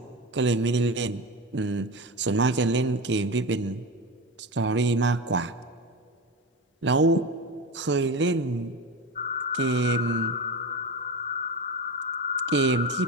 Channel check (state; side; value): normal; both; correlation 0.23